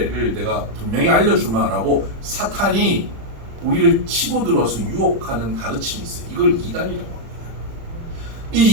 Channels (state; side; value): late; left; 35 ms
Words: 내가 분명히 알려주마라고 사탄이 우리를 치고 들어와서 유혹하는 가르침이 있어요. 이걸 이단이라고 합니다.